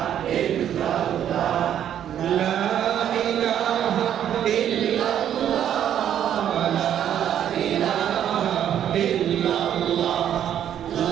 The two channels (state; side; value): quieter; left; 10.1 dB